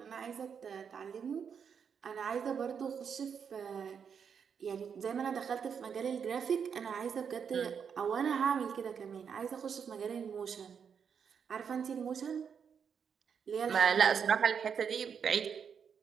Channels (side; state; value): left; quieter; 7.0 dB